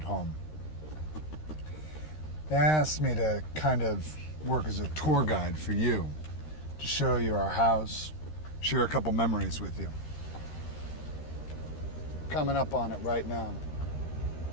home. They asked me to kind of work as a tour guide for you, to show you our house, share a couple memories with you. Coming up on it right now.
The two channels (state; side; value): late; right; 13 ms